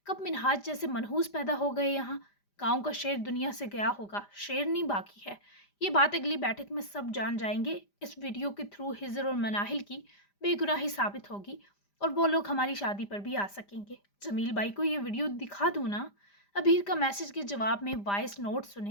कब मिनहाज जैसे मनहूस पैदा हो गए यहाँ। गांव का शेर दुनिया से गया होगा, शेर नहीं बाकी है। ये बात अगली बैठक में सब जान जाएंगे। इस वीडियो के थ्रू हिजर और मनाहिल की बेगुनाही साबित होगी और वो लोग हमारी शादी पर भी आ सकेंगे। जमील भाई को ये वीडियो दिखा दूँ ना? ابیر کا میسج کے جواب میں وائس نوٹ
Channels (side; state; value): right; late; 5.0 ms